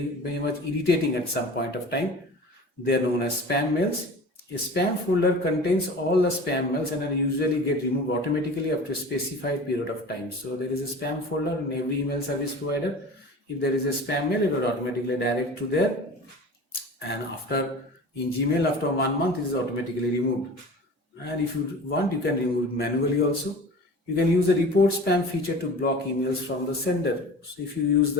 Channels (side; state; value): both; normal; correlation 0.38